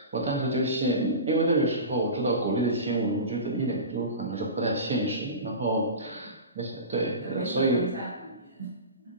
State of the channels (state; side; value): inverted; both; correlation -0.30